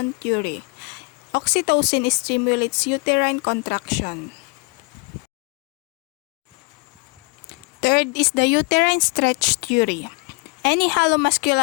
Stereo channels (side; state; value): right; quieter; 31.4 dB